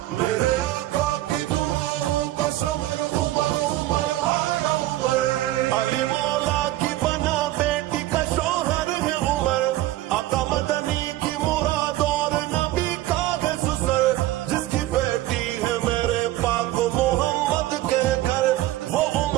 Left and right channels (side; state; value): left; quieter; 15.6 dB